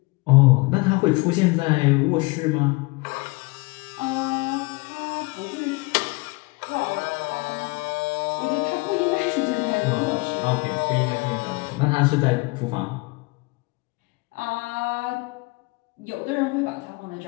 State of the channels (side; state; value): right; quieter; 26.1 dB